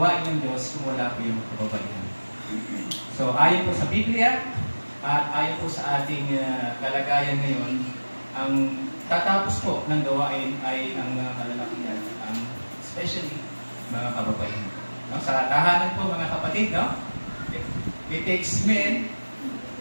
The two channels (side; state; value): both; inverted; correlation -1.00